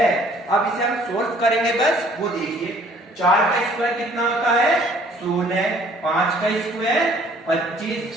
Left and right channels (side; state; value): both; normal; correlation 0.57